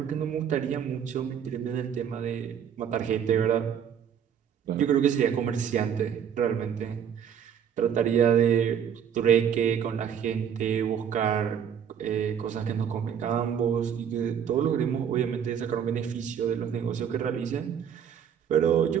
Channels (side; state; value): left; quieter; 8.3 dB